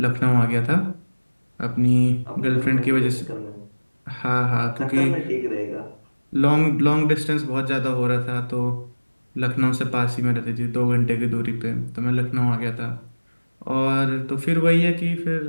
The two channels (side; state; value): both; inverted; correlation -1.00